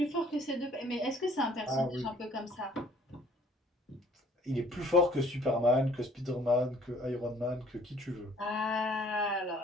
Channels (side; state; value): both; normal; correlation 0.57